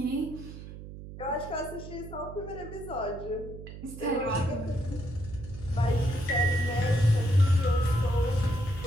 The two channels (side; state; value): right; noise; hum, 12 dB below the sound